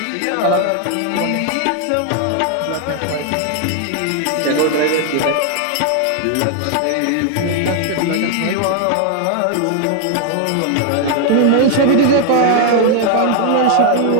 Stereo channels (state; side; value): different; both; correlation 0.00